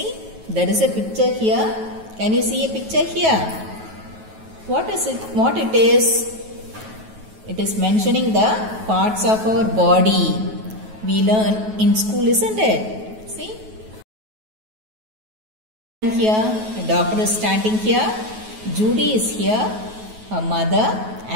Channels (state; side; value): late; left; 9.3 ms